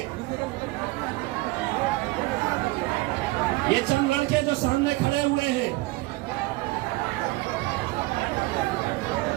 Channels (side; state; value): left; quieter; 21.4 dB